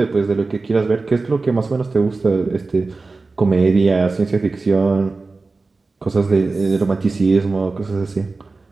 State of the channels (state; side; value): quieter; left; 3.7 dB